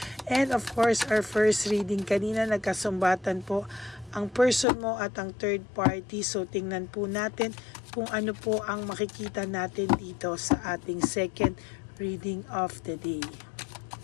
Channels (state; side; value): drops out; right; at 4.7 s